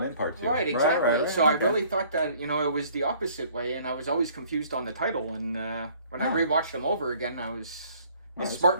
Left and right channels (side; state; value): both; inverted; correlation -0.56